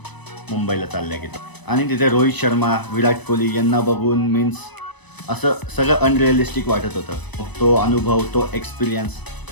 मुंबईला चालल्या गेलो. आणि तिथे रोहित शर्मा, विराट कोहली यांना बघून मीन्स असं सगळं अनरिअलिस्टिक वाटत होतं. तो अनुभव, तो एक्सपिरियन्स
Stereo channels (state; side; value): late; right; 1.0 ms